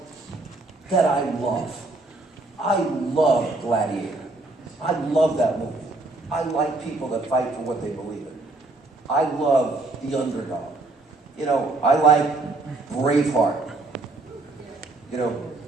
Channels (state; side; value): quieter; left; 3.1 dB